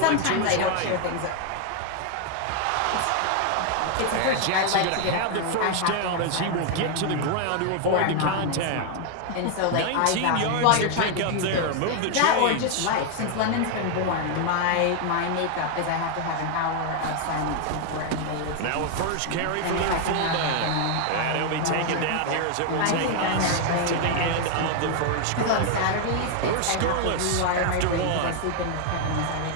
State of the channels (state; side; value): different; both; correlation 0.00